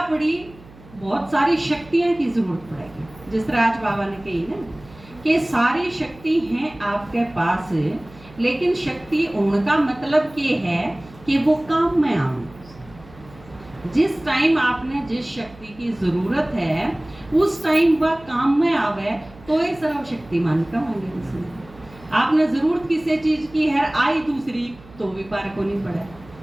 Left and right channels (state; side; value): noise; right; hum, 22 dB below the sound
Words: बड़ी बहुत सारी शक्तियां की जरूरत पड़ेगी। जिस तरह आज बाबा ने कही ना कि सारी शक्ति हैं आपके पास, लेकिन शक्ति उनका मतलब ये है कि वो काम में आए। जिस टाइम आपने जिस शक्ति की जरूरत है उस टाइम वह काम में आवे तो ये सर्वशक्तिमान कहेंगे उसमें। आपने जरूरत किसी चीज की है, आई दूसरी तो भी पार को नहीं पड़े।